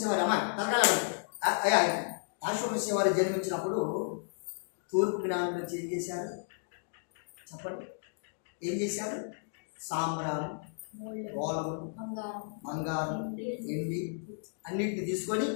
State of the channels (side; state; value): right; silent; digital silence